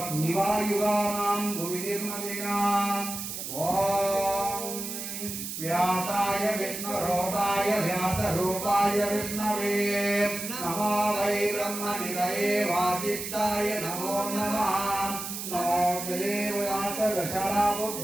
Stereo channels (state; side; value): noise; right; hiss, 6 dB below the sound